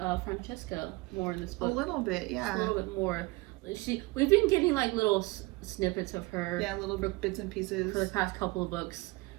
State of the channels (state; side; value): quieter; left; 23.6 dB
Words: Francesca more in this book. A little bit, yeah. A little bit more. We've been getting like little snippets of her. Yeah, little bits and pieces for the past couple of books,